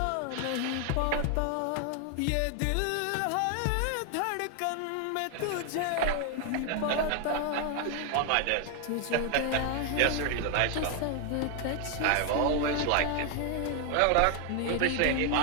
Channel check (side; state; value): both; different; correlation 0.00